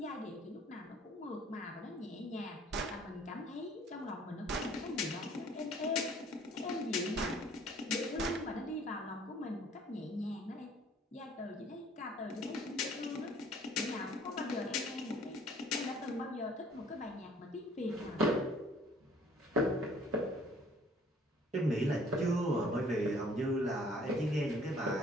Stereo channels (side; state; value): both; normal; correlation 0.56